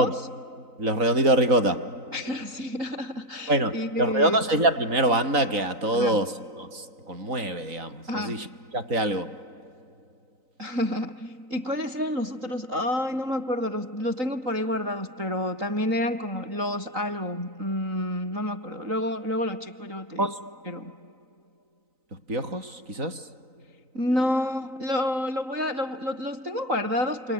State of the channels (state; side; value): late; left; 3.9 ms